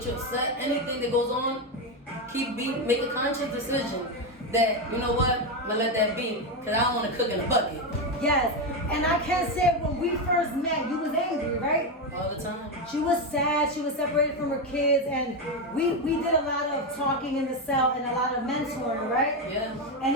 you upset, anything that goes on, make a conscious decision that, you know what, I'm gonna let that be, because I don't want to cook in a bucket. Yes, and I can say when we first met, you was angry, right? All the time. She was sad, she was separated from her kids, and we did a lot of talking in the cell and a lot of mentoring, right? Yeah. And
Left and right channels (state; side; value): normal; both; correlation 0.10